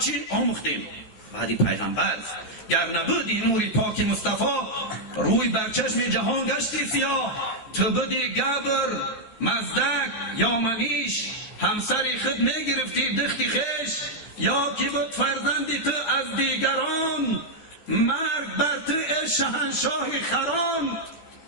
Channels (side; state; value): right; late; 13 ms